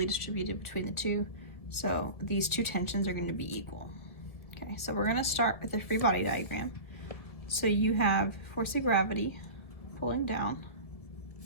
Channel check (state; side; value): late; right; 1.7 ms